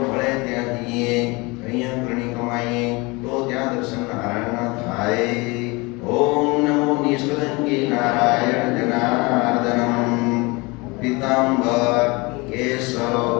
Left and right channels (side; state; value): right; quieter; 25.7 dB